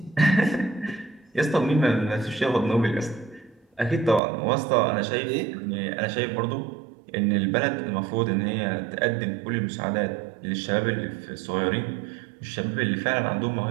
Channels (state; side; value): drops out; left; at 4.2 s